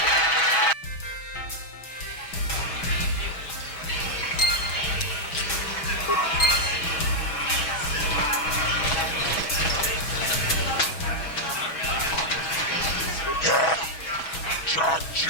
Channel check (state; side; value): late; right; 6.2 ms